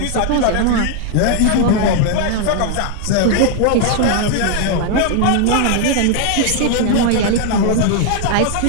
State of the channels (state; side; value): different; both; correlation 0.00